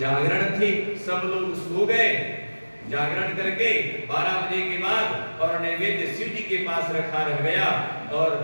थी, सब लोग सो गए, जागरण करके 12 बजे के बाद और नैवेद्य शिव जी के पास रखा रह गया, और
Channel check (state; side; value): inverted; both; correlation -1.00